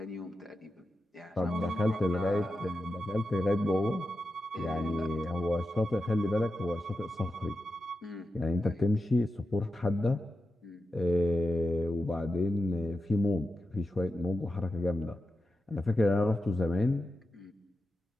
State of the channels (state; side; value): normal; both; correlation 0.91